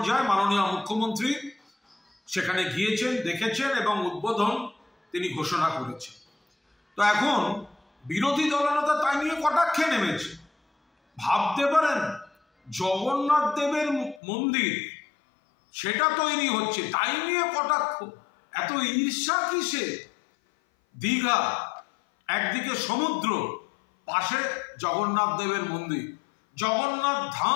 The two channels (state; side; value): drops out; right; at 14.2 s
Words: মাননীয় মুখ্যমন্ত্রী সেখানে গিয়েছেন, দেখেছেন এবং উদ্বোধন তিনি ঘোষণা করেছেন। তো এখন বিরোধী দলনেতা তাই নিয়ে কটাক্ষে নেমেছে। ভাবতে পারেন জগন্নাথ দেবের মন্দির সেটা তৈরি হচ্ছে, তাই নিয়ে কটাক্ষ। এত ঈর্ষা কিসে? দীঘা একদিকে সমুদ্র, পাশে জগন্নাথ দেবের মন্দির, জগন্নাথ